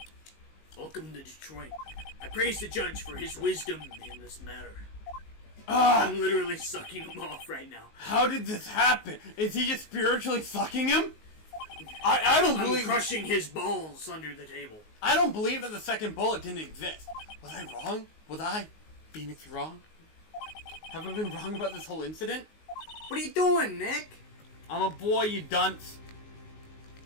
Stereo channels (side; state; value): right; late; 19 ms